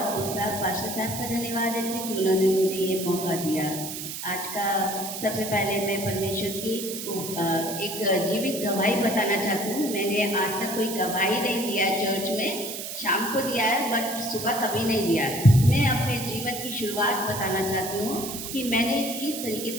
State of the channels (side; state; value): right; noise; hiss, 7 dB below the sound